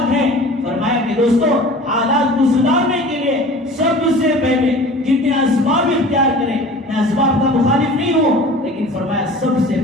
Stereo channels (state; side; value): normal; both; correlation 0.42